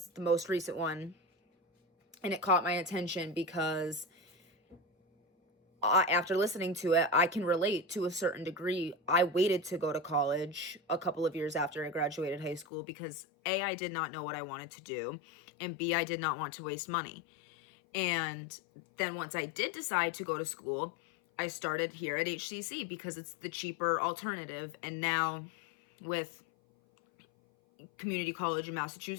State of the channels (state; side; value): drops out; right; at 12.7 s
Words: the most recent one, and it caught my attention because after listening to it, I can relate to a certain degree. I waited to go to college a couple of years after I graduated high school because A, I did not know what I wanted to do, and B, I did not want to waste money. And then once I did decide to go to school, I started here at HCC because it's the cheaper alternative. And now with community college in